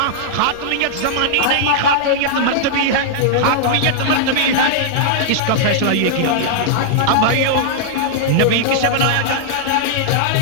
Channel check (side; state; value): both; different; correlation -0.01